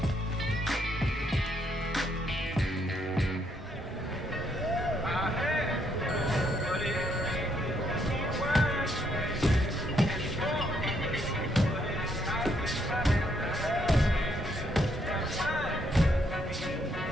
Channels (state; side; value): normal; both; correlation 0.73